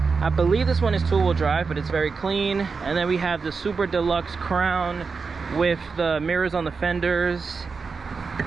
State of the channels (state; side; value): quieter; left; 4.9 dB